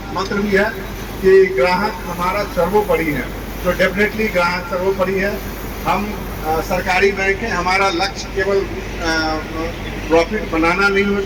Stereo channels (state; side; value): identical; both; correlation 1.00